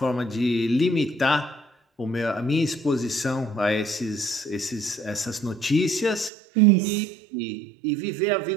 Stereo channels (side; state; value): left; drops out; at 6.3 s